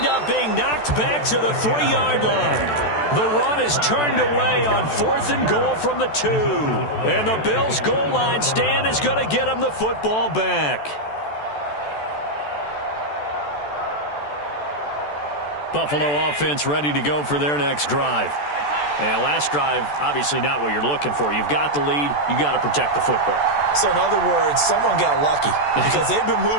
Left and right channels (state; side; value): late; right; 14 ms